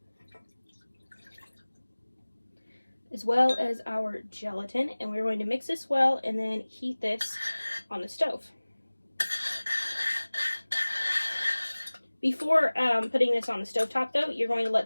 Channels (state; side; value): inverted; both; correlation -1.00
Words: as well as our gelatin, and we're going to mix this well and then heat this on the stove. Before putting this on the stovetop though, you're going to let